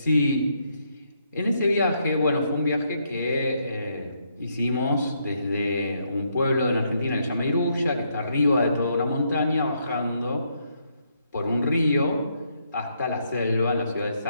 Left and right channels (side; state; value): both; inverted; correlation -0.76